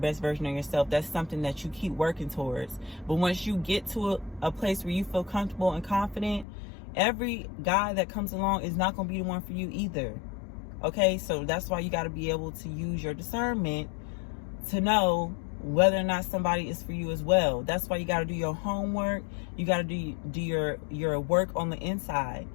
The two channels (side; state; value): right; drops out; at 6.5 s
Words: version of yourself. That's something that you keep working towards. But once you get to a place where you feel comfortable and confident, every guy that comes along is not going to be the one for you either. Okay, so that's why you got to be able to use your discernment to know whether or not somebody is for you as well. That's why you got to do your homework. You got to do your work on the inside